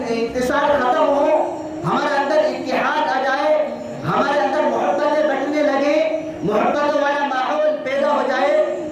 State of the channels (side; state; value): both; identical; correlation 1.00